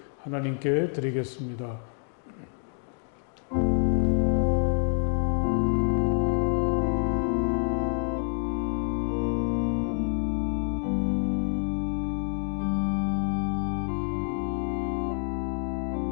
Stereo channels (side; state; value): right; silent; 60 dB below the other